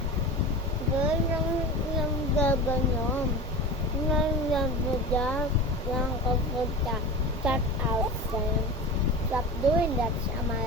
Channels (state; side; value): normal; both; correlation 0.30